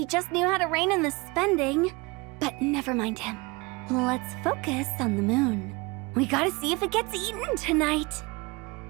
just knew how to rein in the spending. But never mind him. Let's focus on the moon. We gotta see if it gets eaten tonight.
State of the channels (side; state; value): left; quieter; 25.7 dB